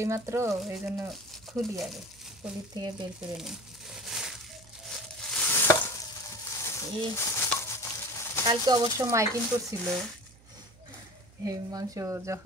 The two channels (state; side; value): noise; right; hum, 26 dB below the sound